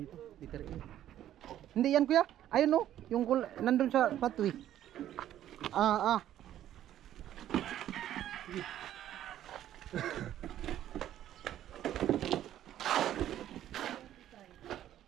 Liter A. Hindi yan kuya. Ayun no. Yung nandun sa patwi. Ah, ah.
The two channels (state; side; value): quieter; left; 11.9 dB